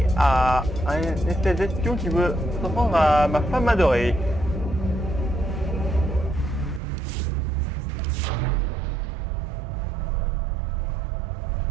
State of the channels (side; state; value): left; drops out; at 6.8 s